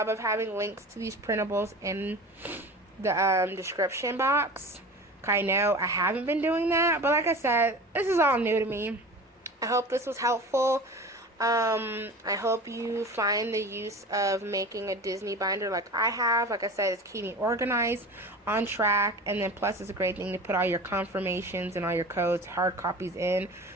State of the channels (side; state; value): both; normal; correlation 0.36